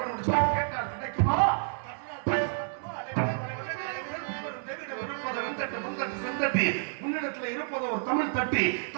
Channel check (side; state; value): left; silent; digital silence